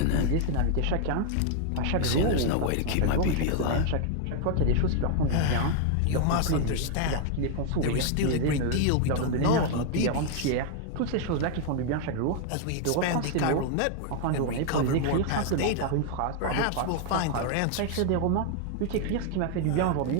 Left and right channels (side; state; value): both; different; correlation 0.00